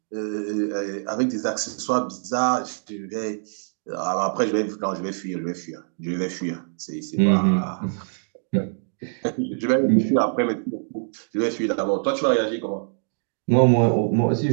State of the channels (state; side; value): silent; left; digital silence